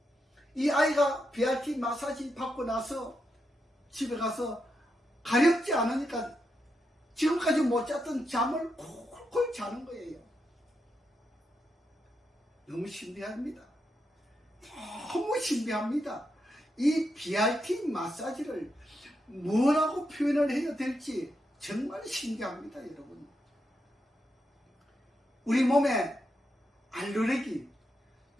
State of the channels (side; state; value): both; normal; correlation 0.84